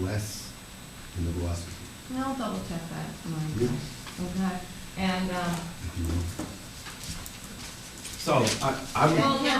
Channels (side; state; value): both; identical; correlation 1.00